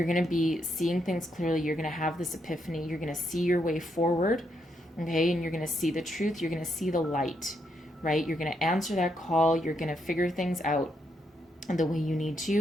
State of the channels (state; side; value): normal; both; correlation 0.78